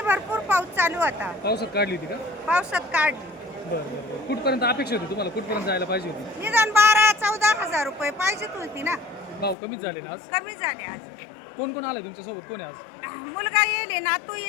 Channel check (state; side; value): drops out; right; at 9.6 s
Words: भरपूर पाऊस चालू होता. पावसात काढली होती का? पावसात काढली. बरं. कुठपर्यंत अपेक्षा होती तुम्हाला? कुठपर्यंत जायला पाहिजे होती? निदान 12-14,000 रुपये पाहिजेत होती ना. भाव कमीच झाले ना आज. कमी झाले आज. कोण कोण आले तुमच्यासोबत? कोण आहे आज? मुलगा येले, नातू